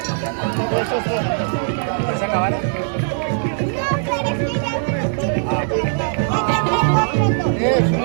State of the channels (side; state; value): left; silent; 66 dB below the other